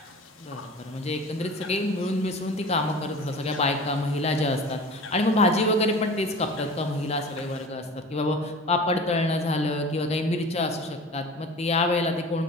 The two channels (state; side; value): normal; both; correlation 0.39